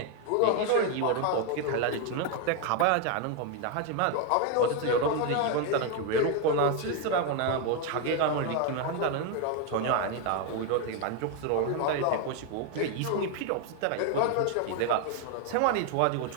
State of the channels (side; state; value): both; different; correlation 0.01